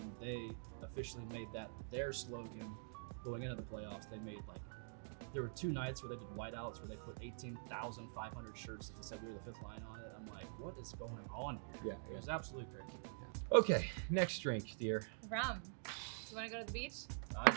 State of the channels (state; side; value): silent; left; digital silence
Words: they officially made that their slogan going into the playoffs. They made there were 2 nights where they did whiteouts where they put 18,500 shirts that said "We were the Fifth Line" on it. I'm like, what is going on here? Yeah. It was absolutely crazy. Okay, next drink, dear. Rum. You want to go to the beach?